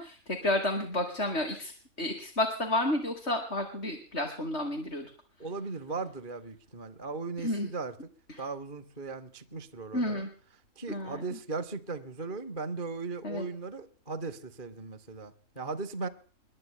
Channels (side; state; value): right; late; 3.1 ms